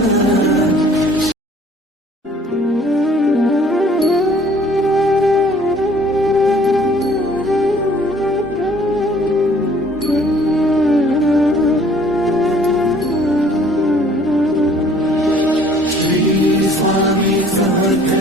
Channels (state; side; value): normal; both; correlation 0.56